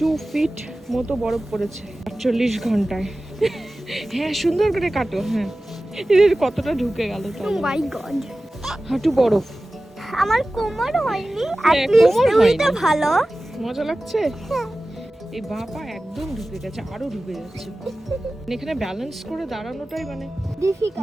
ফিট মতো বরফ পড়েছে 48 ঘন্টায়। হ্যাঁ, সুন্দর করে কাটো। হ্যাঁ, এর কতটা ঢুকে গেল তো। ও মাই গড, হাঁটু বরফ। আমার কোমর হয়নি, হ্যাঁ, অ্যাট লিস্ট কোমর হয়নি। ওইটা ভালো। মজা লাগছে। এই বাপা একদম ঢুকে গেছে, আরো ঢুকে যাচ্ছে। এখানে ব্যালেন্স করে দাঁড়ানোটাই মানে ডিফিকাল্ট।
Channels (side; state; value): both; normal; correlation 0.96